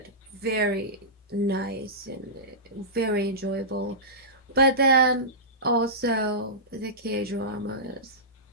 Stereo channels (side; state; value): both; normal; correlation -0.17